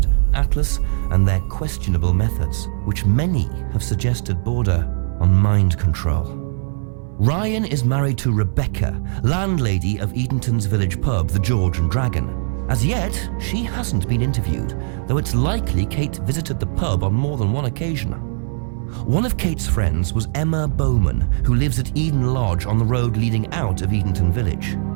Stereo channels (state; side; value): silent; left; 63 dB below the other